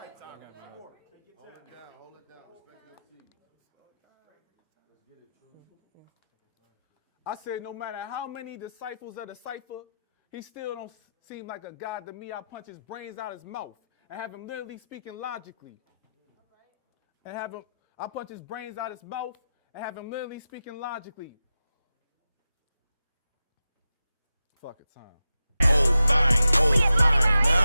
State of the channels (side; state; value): both; inverted; correlation -0.91